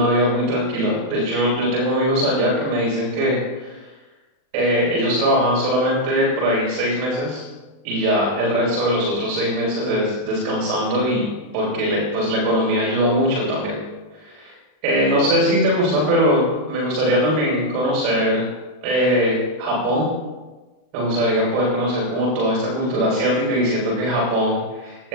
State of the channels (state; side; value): late; left; 39 ms